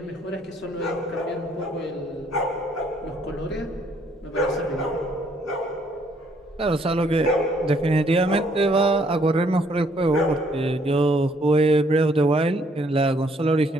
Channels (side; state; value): both; normal; correlation 0.66